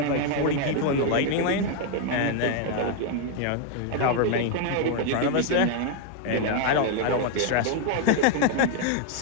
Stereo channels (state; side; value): different; both; correlation 0.00